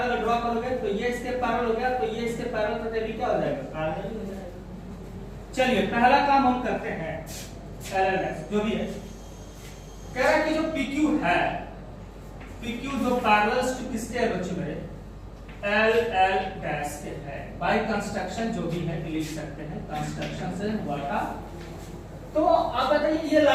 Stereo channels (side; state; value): both; identical; correlation 1.00